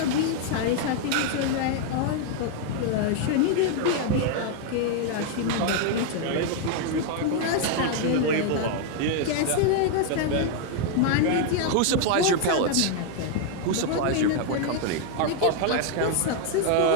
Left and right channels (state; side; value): different; both; correlation 0.00